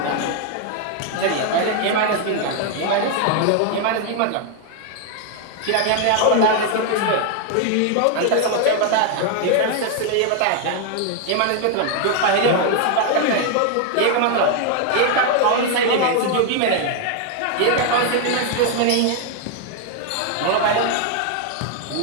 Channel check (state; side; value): different; both; correlation 0.00